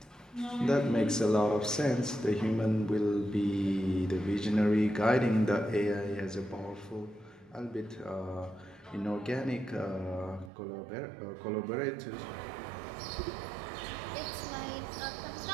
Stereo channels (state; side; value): drops out; left; at 10.5 s